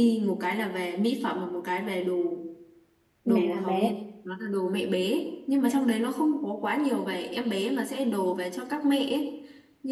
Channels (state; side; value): identical; both; correlation 1.00